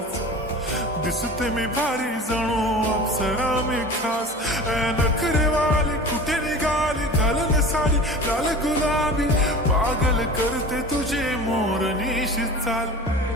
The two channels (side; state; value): both; normal; correlation 0.37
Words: दिसते मी भारी जणू अप्सरा मी खास. नखरेवाली कुठे निघाली घालून साडी लाल गुलाबी, पागल करते तुझे मोरनीशी चाल.